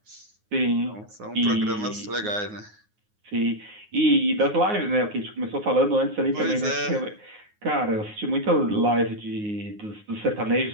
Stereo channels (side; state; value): left; late; 9.5 ms